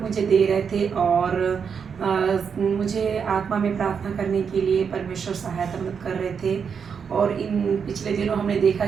दे रहे थे और मुझे आत्मा में प्रार्थना करने के लिए परमेश्वर सहायता मदद कर रहे थे। और इन पिछले दिनों हमने देखा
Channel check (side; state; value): left; quieter; 6.6 dB